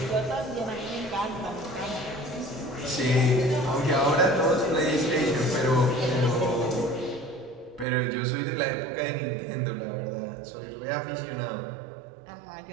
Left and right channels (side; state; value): left; drops out; at 7.9 s